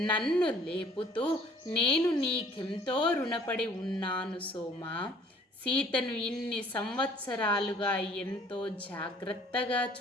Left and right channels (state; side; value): normal; both; correlation 0.55